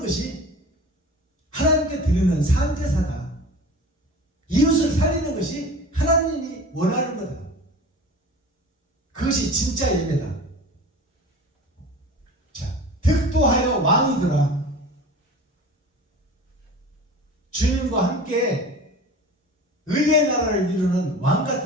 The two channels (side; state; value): both; normal; correlation 0.38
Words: 것이 하나님께 드리는 산제사다. 이웃을 살리는 것이 하나님이 원하는 거다. 그것이 진짜 예배다. 자, 득도하여 왕이더라. 주님과 함께 의의 나라를 이루는